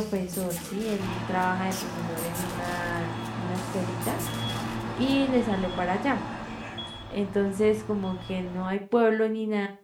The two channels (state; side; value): identical; both; correlation 1.00